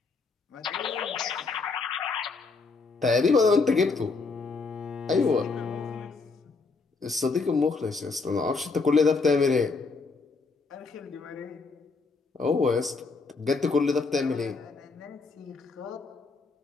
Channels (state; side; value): quieter; right; 4.2 dB